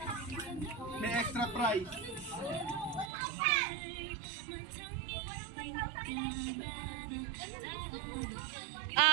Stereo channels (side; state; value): left; drops out; at 3.1 s